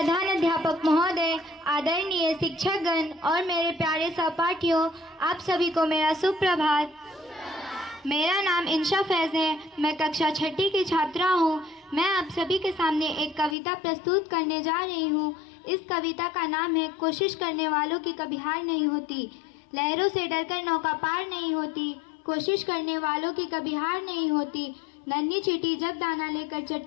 अध्यापक महोदय, आदरणीय शिक्षकगण और मेरे प्यारे सहपाठियों, आप सभी को मेरा सुप्रभात। मेरा नाम इंशा फैज़ है। मैं कक्षा 6ठी की छात्रा हूँ। मैं आप सभी के सामने एक कविता प्रस्तुत करने जा रही हूँ। इस कविता का नाम है कोशिश करने वालों की कभी हार नहीं होती। लहरों से डरकर नौका पार नहीं होती, कोशिश करने वालों की कभी हार नहीं होती। नन्ही चींटी जब दाना लेकर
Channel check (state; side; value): drops out; right; at 13.6 s